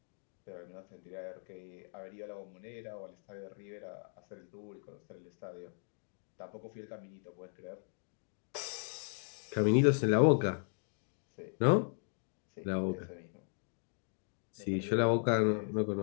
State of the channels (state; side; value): silent; right; 53 dB below the other